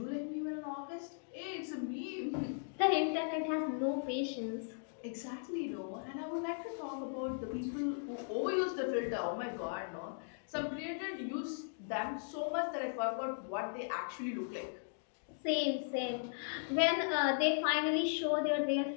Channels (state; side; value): silent; right; digital silence